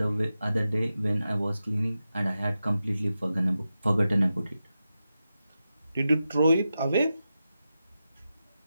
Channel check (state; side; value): inverted; both; correlation -0.91